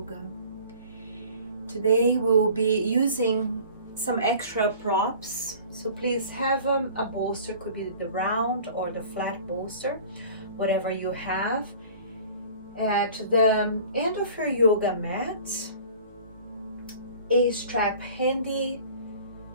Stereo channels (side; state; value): both; inverted; correlation -0.46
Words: Today we will be using some extra props. So please have a bolster, could be the round or the flat bolster, whatever you have. At the end of your yoga mat, a strap handy,